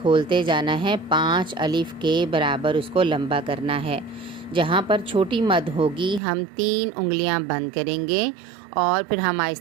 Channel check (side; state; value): left; drops out; at 6.2 s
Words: جانا ہے، 5 الف کے برابر اس کو لمبا کرنا ہے۔ جہاں پر چھوٹی مد ہوگی ہم 3 انگلیاں بند کریں گے اور پھر ہم